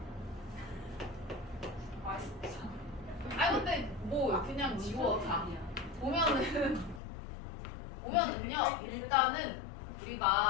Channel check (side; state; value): right; drops out; at 7.0 s